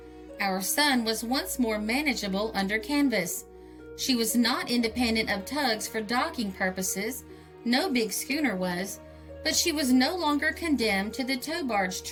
Our Son was once more manageable under canvas. She was not independent of tugs for docking purposes, no big schooner was, but she was no longer condemned to the tow barge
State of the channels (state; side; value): identical; both; correlation 1.00